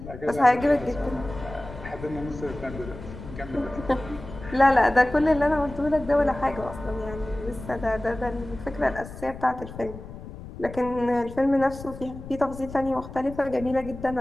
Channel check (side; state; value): left; noise; rumble, 13 dB below the sound